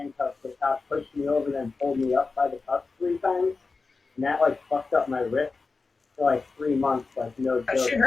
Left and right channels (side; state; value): right; quieter; 4.1 dB